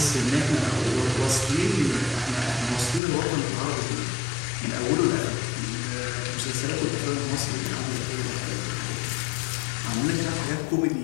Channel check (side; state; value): right; drops out; at 3.0 s